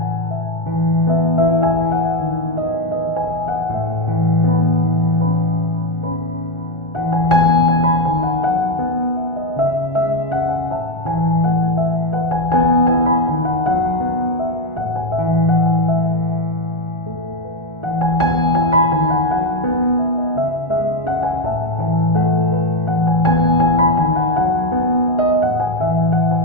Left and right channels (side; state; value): right; late; 1.4 ms